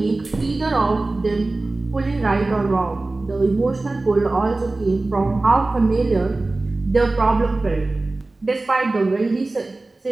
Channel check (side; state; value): left; quieter; 3.1 dB